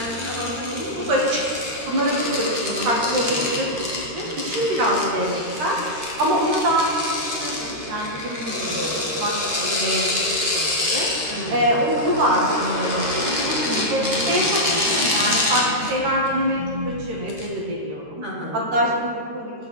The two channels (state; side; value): late; left; 13 ms